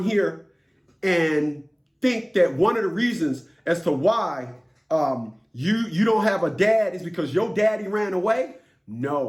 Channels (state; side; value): identical; both; correlation 1.00